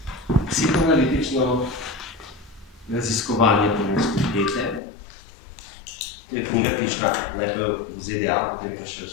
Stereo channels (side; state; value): right; drops out; at 4.8 s